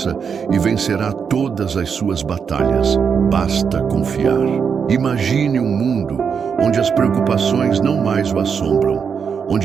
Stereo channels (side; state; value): left; quieter; 6.5 dB